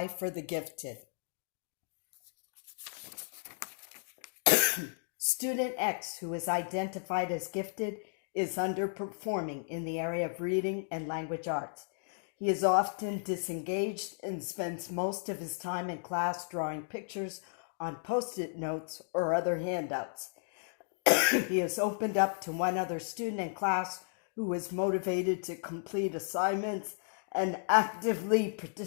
for the Gifted. Student X, who is identified as gifted, is underperforming in the area of reading and language arts. He is often disengaged and spends most of his time in class drawing pictures on post-it notes or other handouts. He has opened up to one other student in class who is motivated to complete assignments and actively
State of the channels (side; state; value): right; silent; digital silence